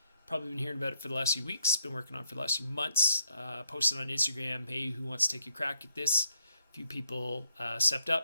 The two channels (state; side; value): inverted; both; correlation -0.74